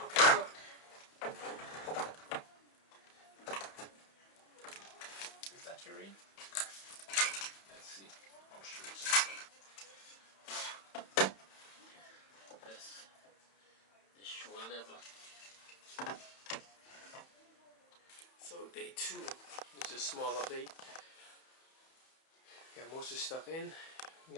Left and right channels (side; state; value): right; late; 31 ms